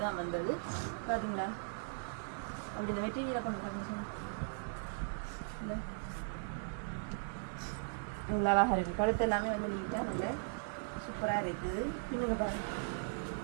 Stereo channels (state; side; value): silent; left; digital silence